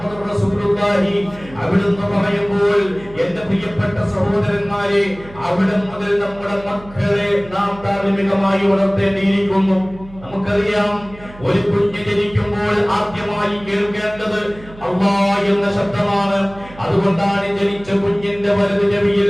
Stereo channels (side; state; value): right; noise; hum, 19 dB below the sound